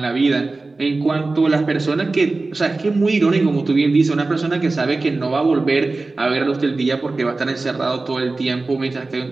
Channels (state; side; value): quieter; left; 3.5 dB